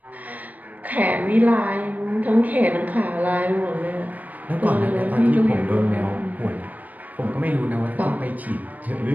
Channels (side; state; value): left; late; 0.078 ms